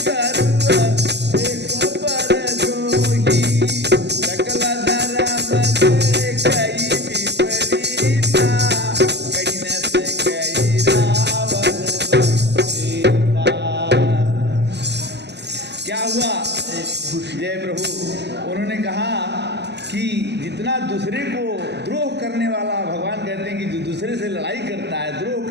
एक पर जोही, सकल धर्म से कई विपरीता, कहीं न से कई रावण सीता। क्या हुआ? जय प्रभु। उन्होंने कहा कि जितना दूसरे को द्रोह करने वाला, भगवान कहते हैं कि जो दूसरे से लड़ाई करता है, द्रोह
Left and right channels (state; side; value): late; left; 0.50 ms